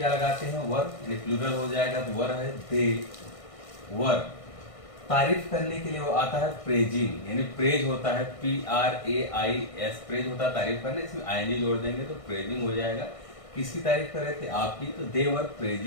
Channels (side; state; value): right; late; 1.6 ms